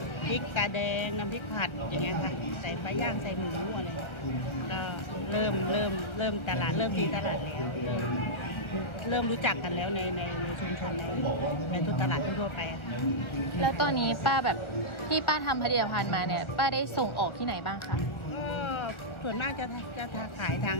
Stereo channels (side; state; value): right; late; 1.3 ms